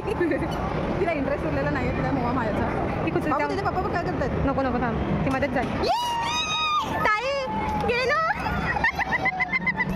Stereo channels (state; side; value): identical; both; correlation 1.00